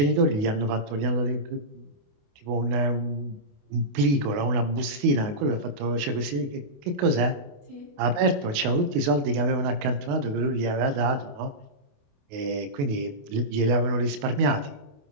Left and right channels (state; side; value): late; left; 28 ms